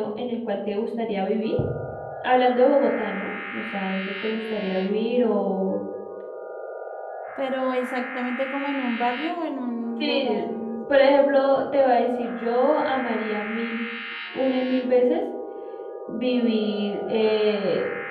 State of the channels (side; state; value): both; identical; correlation 1.00